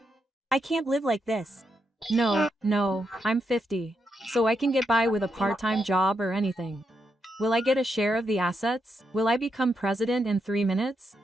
I can't live like this. No, I'm 50, so I can get by with a part-time job or anything. Will I get a share of the assets? Will I become president in 3 minutes?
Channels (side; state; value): both; normal; correlation 0.82